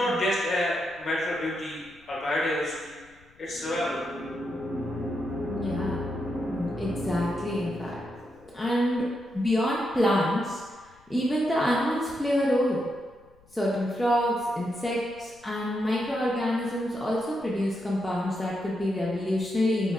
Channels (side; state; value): left; noise; rumble, 29 dB below the sound